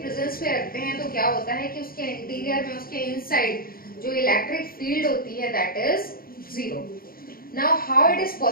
में रखते हैं तो क्या होता है कि उसके इंटीरियर में, उसके इनसाइड जो इलेक्ट्रिक फील्ड होती है that is zero. Now how it is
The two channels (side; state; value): right; late; 0.42 ms